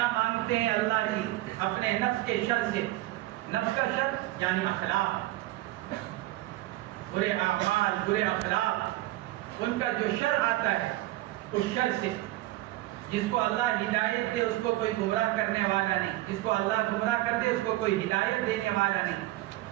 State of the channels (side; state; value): left; quieter; 17.2 dB